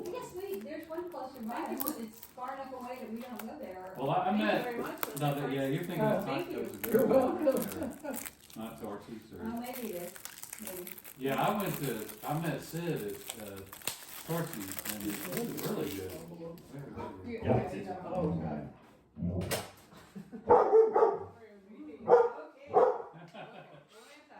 Yes, there's one closer by, it's far enough away that we don't go there. Well, I Thank you met, very much. no, yeah, you're thinking of Thank you. tacos. You're welcome. Not torches Oh, or, maybe it is, maybe. yeah, I met Sid at, Torchy's, and it was really good. Very good. Oh, God.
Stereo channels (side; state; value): both; identical; correlation 1.00